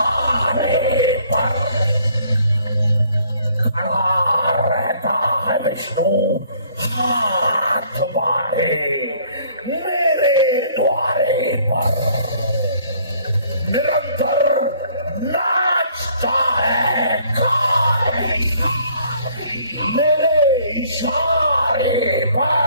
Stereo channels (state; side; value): inverted; both; correlation -0.60